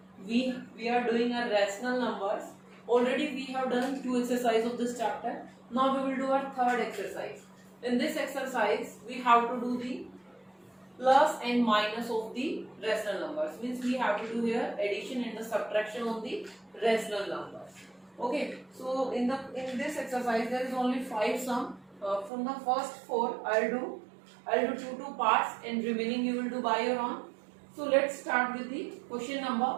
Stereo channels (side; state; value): left; drops out; at 22.3 s